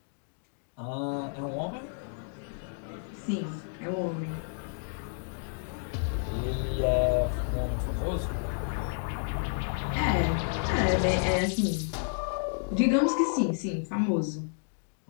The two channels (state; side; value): silent; right; digital silence